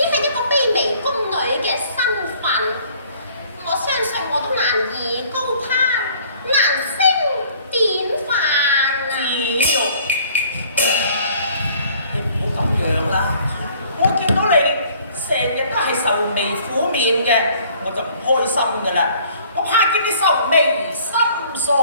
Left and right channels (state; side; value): inverted; both; correlation -0.56